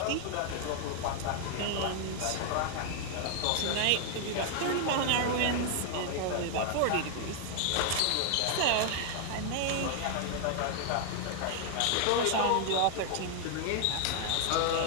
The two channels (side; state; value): both; different; correlation 0.00